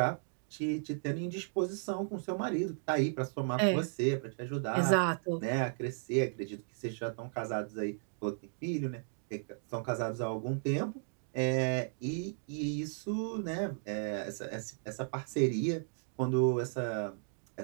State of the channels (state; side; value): silent; left; digital silence